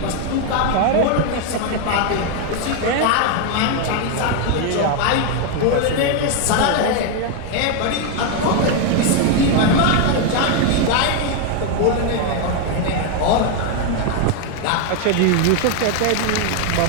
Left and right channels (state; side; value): different; both; correlation 0.01